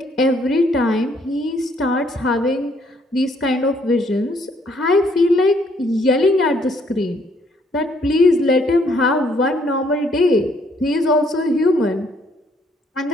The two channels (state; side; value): normal; both; correlation 0.67